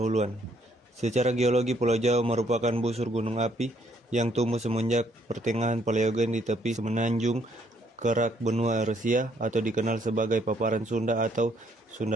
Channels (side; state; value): both; normal; correlation 0.68